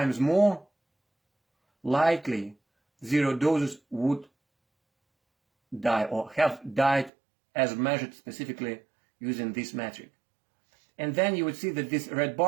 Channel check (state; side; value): drops out; left; at 7.1 s